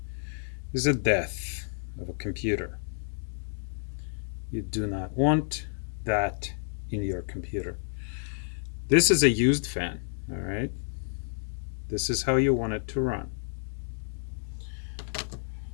is a death of a computer. You do not want that in your computer. This is a used fan, all right? This is how you want it to run.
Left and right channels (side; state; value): right; silent; digital silence